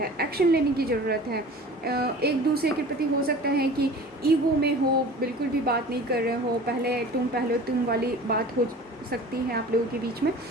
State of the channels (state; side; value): normal; both; correlation 0.41